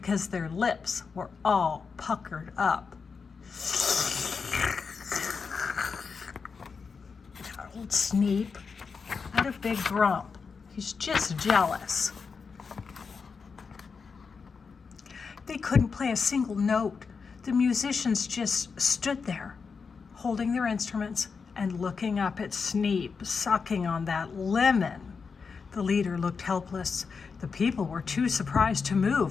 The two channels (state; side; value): quieter; right; 5.3 dB